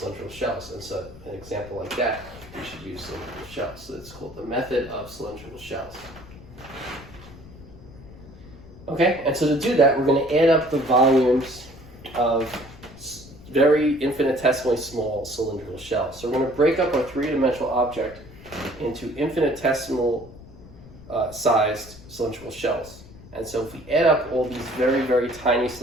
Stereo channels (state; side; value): noise; left; rumble, 19 dB below the sound